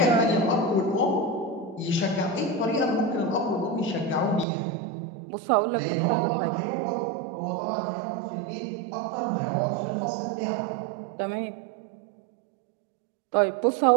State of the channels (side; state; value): left; drops out; at 4.5 s